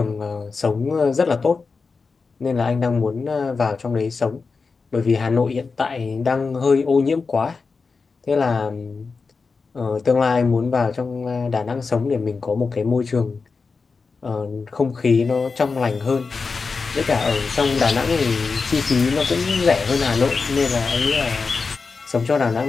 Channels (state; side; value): quieter; right; 4.6 dB